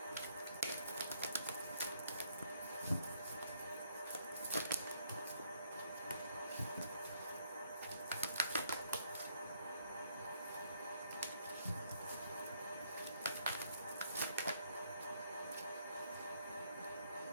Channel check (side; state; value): both; inverted; correlation -0.70